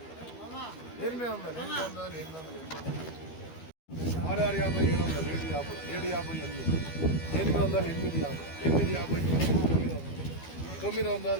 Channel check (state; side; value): late; right; 12 ms